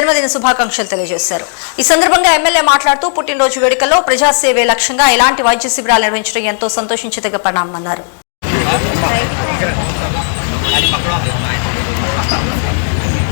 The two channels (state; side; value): silent; right; 72 dB below the other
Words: శుభాకాంక్షలు తెలియజేశారు. ఈ సందర్భంగా ఎమ్మెల్యే మాట్లాడుతూ పుట్టినరోజు వేడుకల్లో ప్రజాసేవే లక్ష్యంగా ఇలాంటి వైద్య శిబిరాలు నిర్వహించడం ఎంతో సంతోషించదగ్గ పరిణామన్నారు.